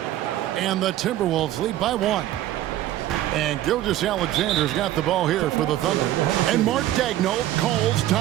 And the Timberwolves lead by 1. And Gilgeous-Alexander's got the ball here for the Thunder. And Mark Daigneault calls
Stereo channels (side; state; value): left; quieter; 13.7 dB